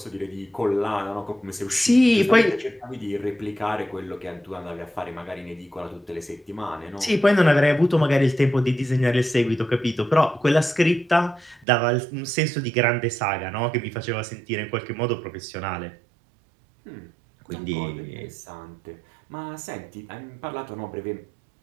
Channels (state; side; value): drops out; left; at 11.7 s